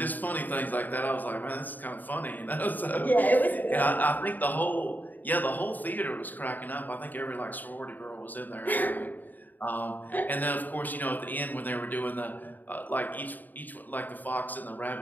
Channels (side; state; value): right; late; 0.086 ms